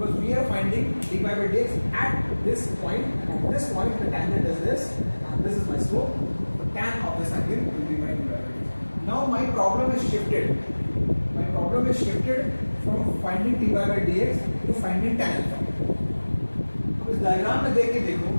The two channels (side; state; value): both; inverted; correlation -1.00